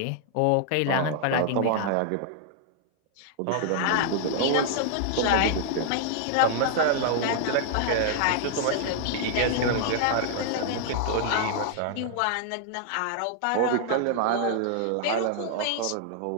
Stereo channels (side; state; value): both; different; correlation 0.00